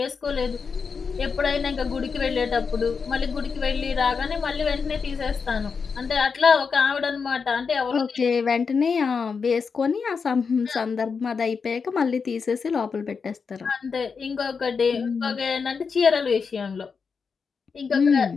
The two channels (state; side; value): quieter; right; 5.5 dB